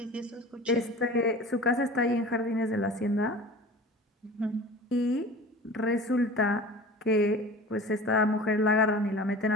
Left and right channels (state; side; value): normal; both; correlation 0.39